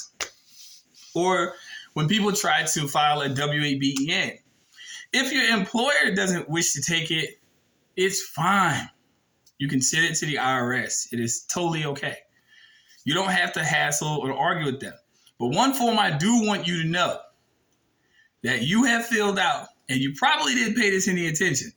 Or when people try to file a W-8BEN, if your employer doesn't wish to take it, it's fine. You can send it to the IRS. It is totally okay. You don't have to hassle or argue with them. But one form I do want you to know that you have filled out, and you probably didn't pay this any attention,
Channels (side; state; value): both; identical; correlation 1.00